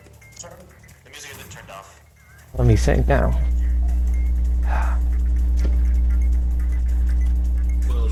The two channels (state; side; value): identical; both; correlation 1.00